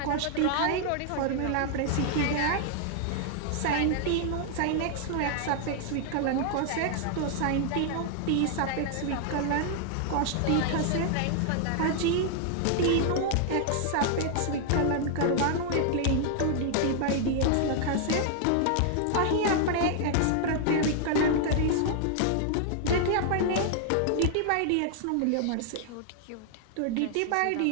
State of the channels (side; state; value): both; different; correlation 0.00